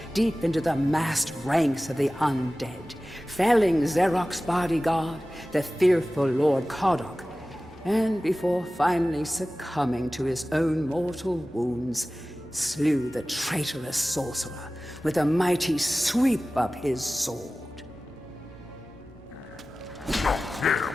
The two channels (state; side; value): normal; both; correlation 0.96